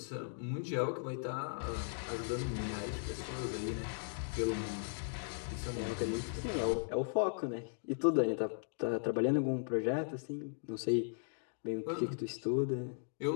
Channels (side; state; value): right; silent; digital silence